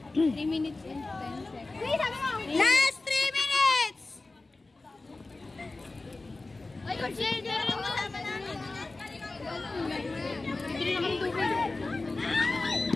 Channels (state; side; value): quieter; right; 3.3 dB